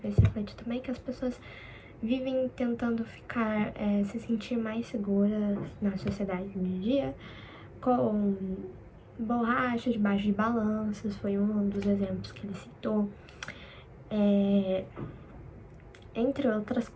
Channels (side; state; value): both; identical; correlation 1.00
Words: refletir também, que as pessoas vivem tentando ficar, se sentir mais seguras na sociedade de dia, com borracha debaixo de balanças, foi um dos exemplos que ele citou. Entre outras